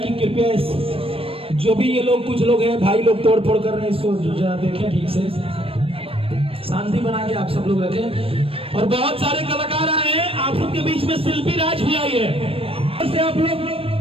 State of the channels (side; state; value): left; late; 0.28 ms